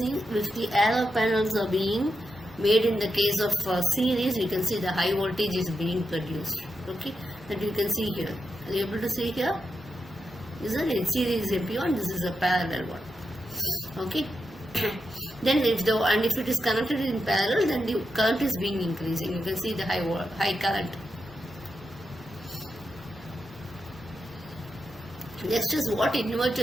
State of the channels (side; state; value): both; normal; correlation 0.86